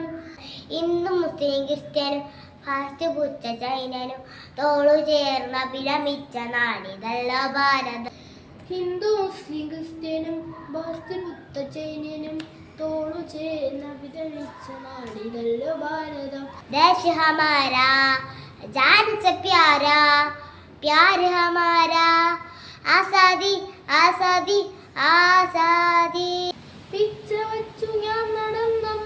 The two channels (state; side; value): identical; both; correlation 1.00